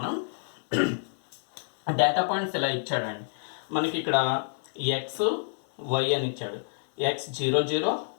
డేటా పాయింట్స్ ఇలా ఇచ్చాడండి మనకి. ఇక్కడ ఎక్స్ వై అని ఇచ్చాడు. ఎక్స్ 0 0,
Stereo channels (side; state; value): right; silent; 59 dB below the other